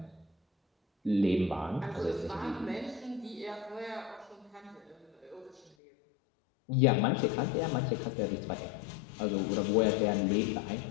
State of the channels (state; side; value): drops out; right; at 5.8 s